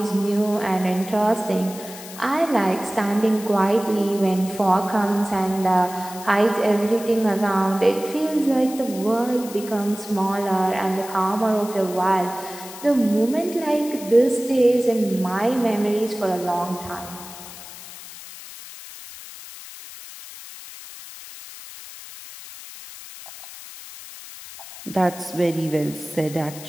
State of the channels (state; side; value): noise; left; hiss, 14 dB below the sound